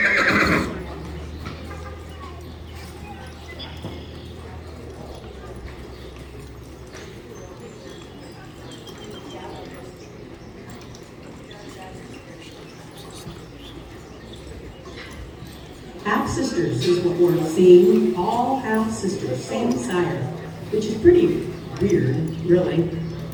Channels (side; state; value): both; identical; correlation 1.00